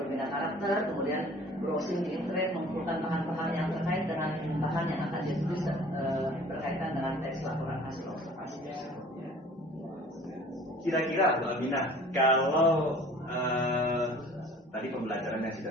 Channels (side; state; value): both; normal; correlation 0.49